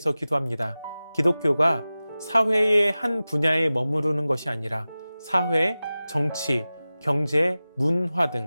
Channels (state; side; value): inverted; both; correlation -0.96